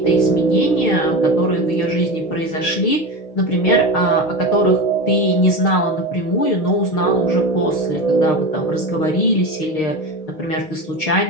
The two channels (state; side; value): late; right; 6.5 ms